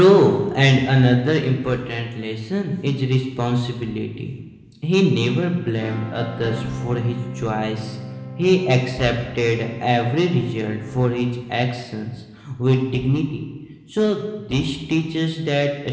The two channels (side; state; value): both; identical; correlation 1.00